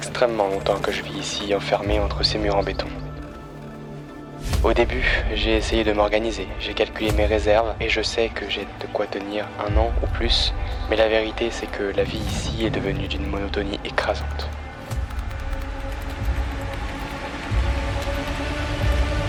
longtemps que je vis ici, enfermé entre ces murs en béton. Au début, j'ai essayé de m'organiser, j'ai calculé mes réserves et je sais que j'ai de quoi tenir 1 an ou plus, mais la vérité c'est que la vie ici est devenue d'une monotonie écrasante.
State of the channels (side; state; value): both; identical; correlation 1.00